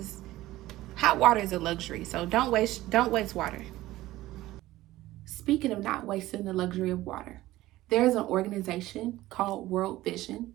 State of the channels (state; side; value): quieter; left; 16.5 dB